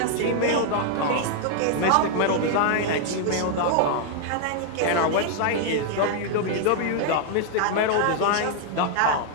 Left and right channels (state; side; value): different; both; correlation 0.00